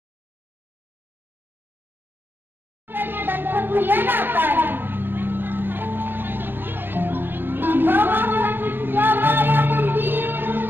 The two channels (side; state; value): left; late; 0.096 ms